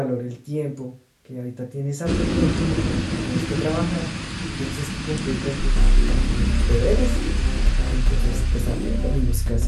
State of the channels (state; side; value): identical; both; correlation 1.00